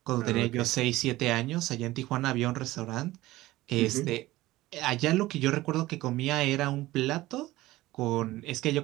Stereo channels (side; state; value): left; quieter; 17.6 dB